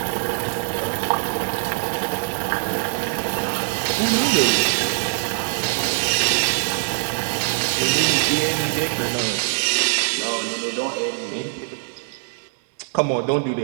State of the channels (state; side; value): silent; left; digital silence